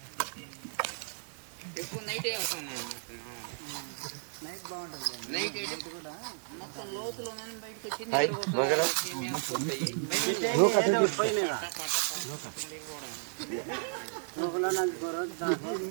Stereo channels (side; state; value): left; silent; digital silence